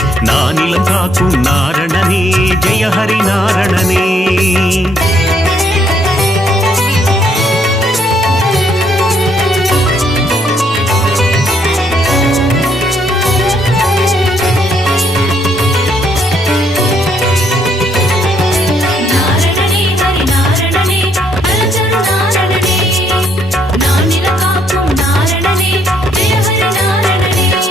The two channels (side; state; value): both; normal; correlation 0.70